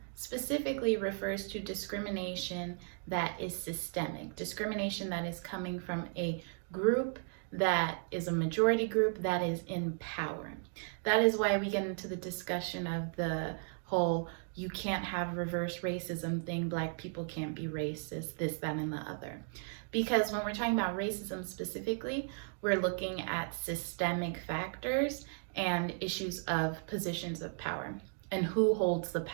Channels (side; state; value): left; silent; 54 dB below the other